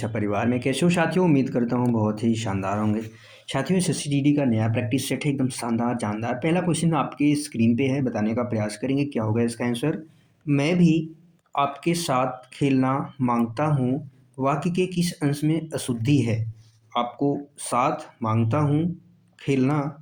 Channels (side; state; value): both; identical; correlation 1.00